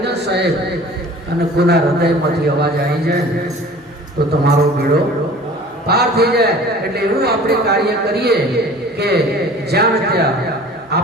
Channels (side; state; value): both; normal; correlation 0.45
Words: દો સાહેબ, અને કોના હૃદયમાંથી અવાજ આવી જાય તો તમારો બેડો પાર થઈ જાય. એટલે એવું આપણે કાર્ય કરીએ કે જ્યાં ત્યાં